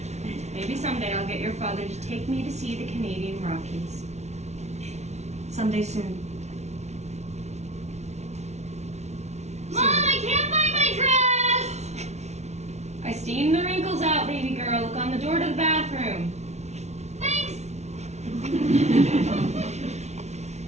Maybe someday I'll get your father to take me to see the Canadian Rockies. Someday soon. Mom, I can't find my dress! I steamed the wrinkles out, baby girl. Look on the door to the bathroom. Thanks!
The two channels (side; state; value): left; late; 0.32 ms